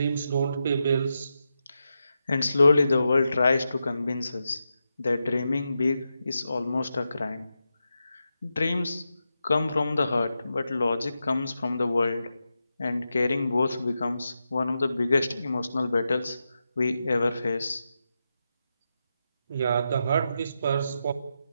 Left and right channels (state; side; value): inverted; both; correlation -0.88